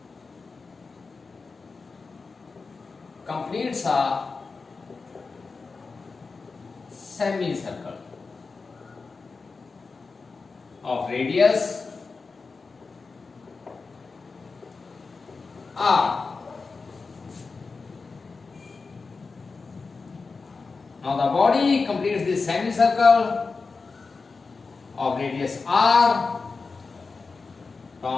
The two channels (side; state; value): right; quieter; 4.4 dB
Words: completes a semicircle of radius r. Now the body completes this semicircle of radius r